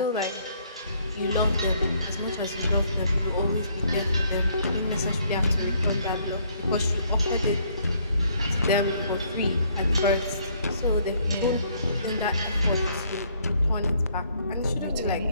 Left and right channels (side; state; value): both; inverted; correlation -0.66